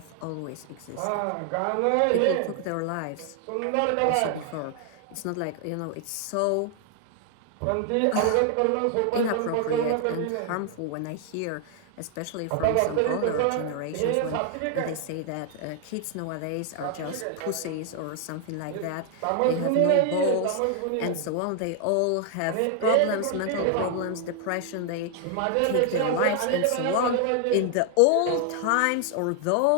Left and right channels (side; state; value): both; different; correlation 0.00